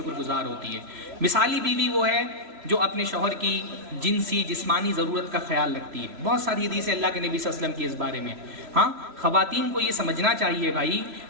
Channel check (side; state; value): left; late; 3.0 ms